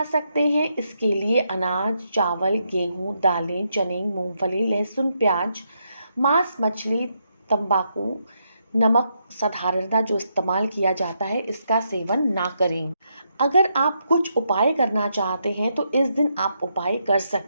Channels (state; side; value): inverted; both; correlation -0.80